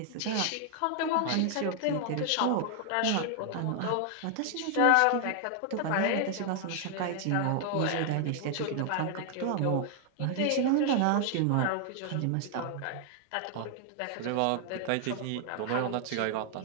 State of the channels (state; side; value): different; both; correlation 0.00